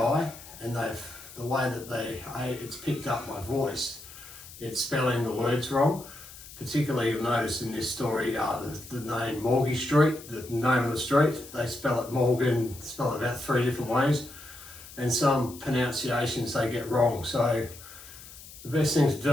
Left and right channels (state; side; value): noise; left; hiss, 17 dB below the sound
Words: and the way that it's picked up my voice, it's spelling the words wrong. Particularly, you'll notice in this story, the name Morgie Street, the name of the street, they spell it Morgan, spell it about 3 different ways, and some pronunciations they get wrong. So the best thing to